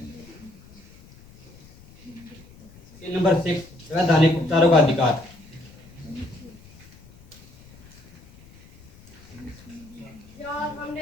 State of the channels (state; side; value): noise; left; rumble, 23 dB below the sound